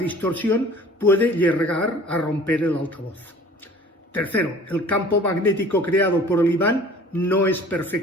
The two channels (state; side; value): normal; both; correlation 0.48